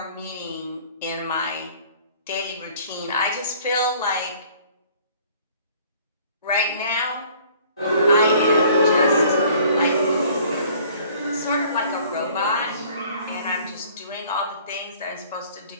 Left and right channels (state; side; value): inverted; both; correlation -0.54